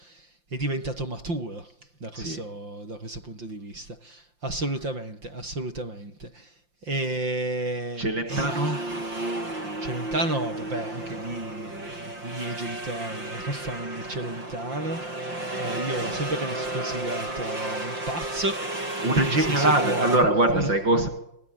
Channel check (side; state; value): left; late; 5.7 ms